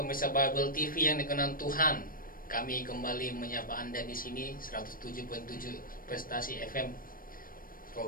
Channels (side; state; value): right; late; 0.41 ms